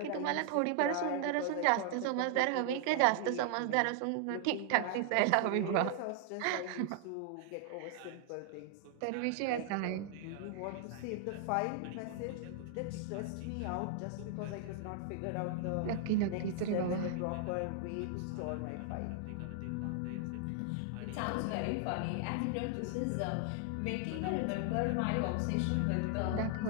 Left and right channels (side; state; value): both; different; correlation 0.00